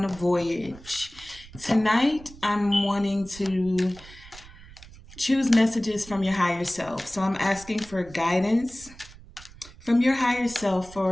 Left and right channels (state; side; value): noise; right; rumble, 20 dB below the sound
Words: a voyage. Tonight, I'm wanting to choose messages from your higher self. So I'm asking for guidance from your higher self